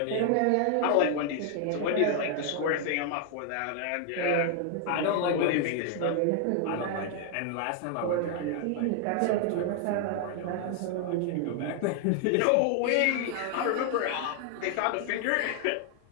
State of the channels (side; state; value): both; different; correlation 0.00